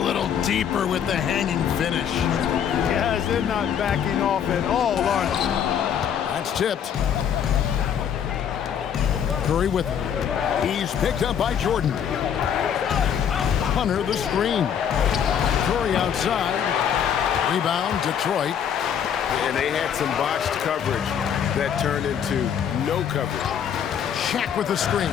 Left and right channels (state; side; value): quieter; right; 8.5 dB